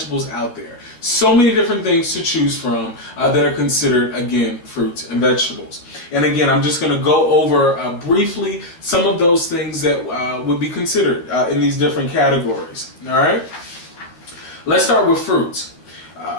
out there. So many different things to choose from that are considered, again, fruits and vegetables. And again, I'm just going to go over briefly some of those things that would be considered in these different categories. All right? Let's start with fruits.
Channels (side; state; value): right; late; 12 ms